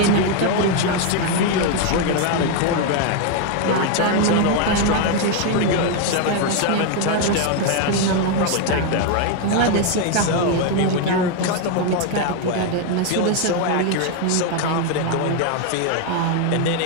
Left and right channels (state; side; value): different; both; correlation 0.01